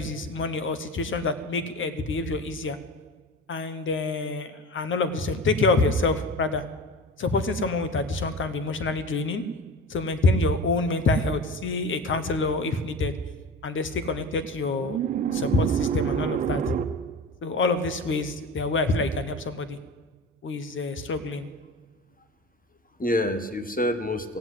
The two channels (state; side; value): normal; both; correlation 0.32